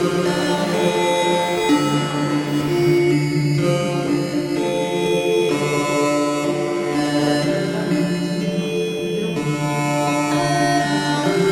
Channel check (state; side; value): identical; both; correlation 1.00